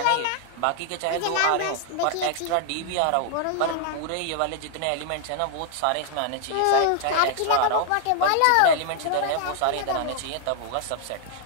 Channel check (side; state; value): both; different; correlation 0.00